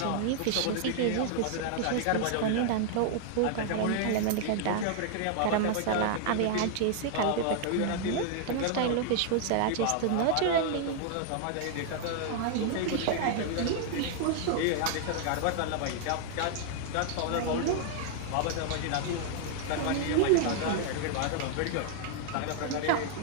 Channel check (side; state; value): both; different; correlation -0.01